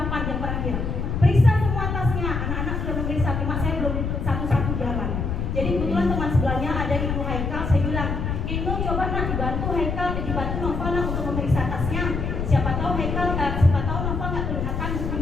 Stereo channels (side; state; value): left; noise; rumble, 2 dB below the sound